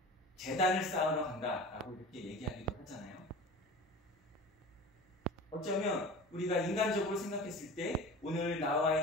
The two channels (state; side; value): normal; both; correlation 0.36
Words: 제단을 쌓으러 간다라고 이렇게 얘기하기도 하잖아요. 어쩌면 우리가 인간적으로 생각했을 때 오늘 나와